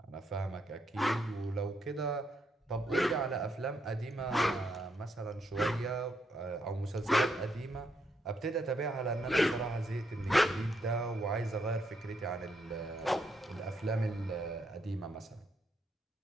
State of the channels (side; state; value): both; normal; correlation 0.77